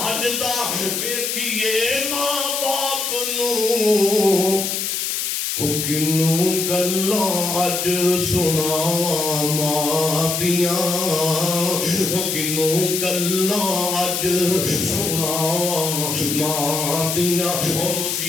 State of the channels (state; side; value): noise; left; hiss, 1 dB below the sound